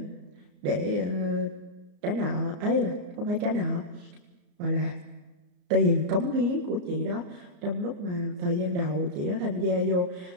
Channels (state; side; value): late; left; 34 ms